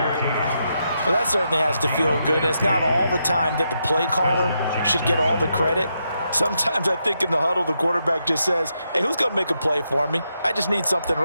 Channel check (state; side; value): inverted; both; correlation -0.82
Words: Well, that certainly has to feel good. And it's not all the time that the play caller should get all the credit. Sometimes I think in the huddle, the quarterback just says, hey, who's going to make a play for me? I just need something